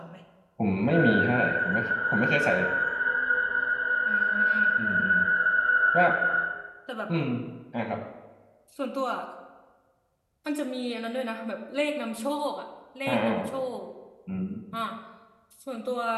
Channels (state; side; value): identical; both; correlation 1.00